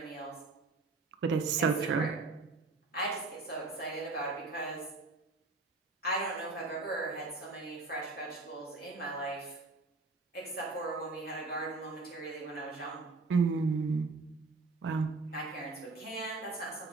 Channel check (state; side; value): quieter; left; 3.6 dB